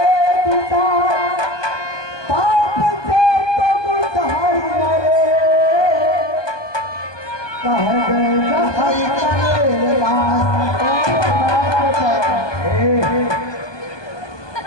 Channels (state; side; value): late; right; 1.2 ms